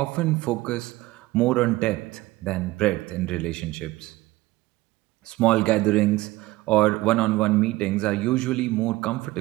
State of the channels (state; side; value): quieter; left; 18.9 dB